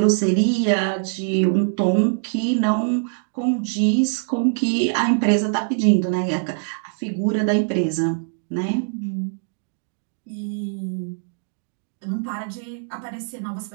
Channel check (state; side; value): silent; left; digital silence